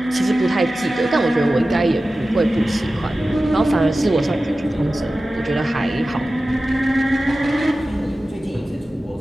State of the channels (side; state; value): both; normal; correlation 0.95